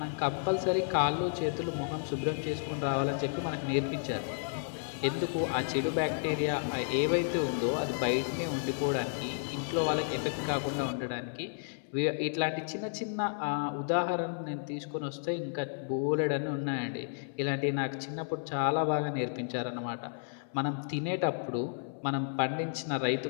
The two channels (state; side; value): silent; right; 56 dB below the other